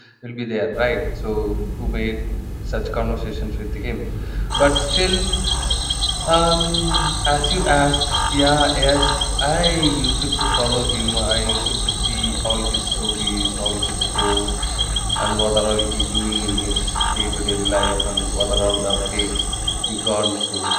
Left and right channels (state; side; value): identical; both; correlation 1.00